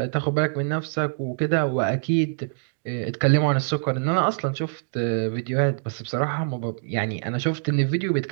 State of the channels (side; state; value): left; silent; digital silence